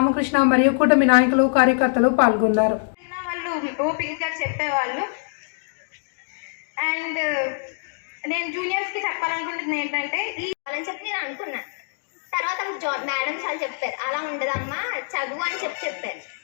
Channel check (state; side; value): silent; right; digital silence